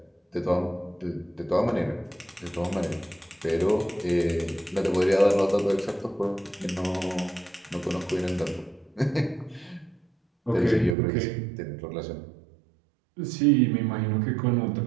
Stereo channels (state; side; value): drops out; left; at 11.0 s